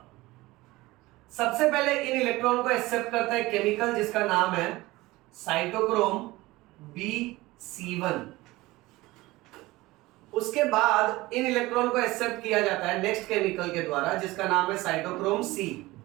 सबसे पहले इन इलेक्ट्रॉन को एक्सेप्ट करता है केमिकल जिसका नाम है साइटोक्रोम BC1। उसके बाद इन इलेक्ट्रॉन को एक्सेप्ट किया जाता है नेक्स्ट केमिकल के द्वारा जिसका नाम है साइटोक्रोम C।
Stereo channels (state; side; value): quieter; left; 19.6 dB